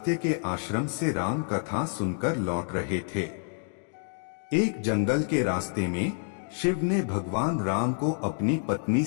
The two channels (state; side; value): silent; right; 59 dB below the other